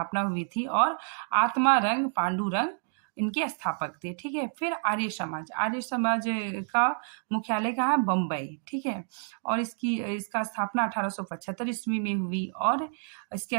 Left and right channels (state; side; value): silent; left; 59 dB below the other